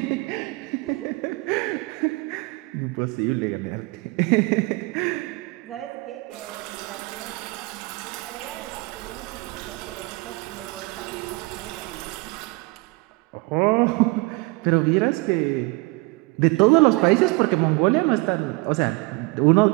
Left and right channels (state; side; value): quieter; left; 25.0 dB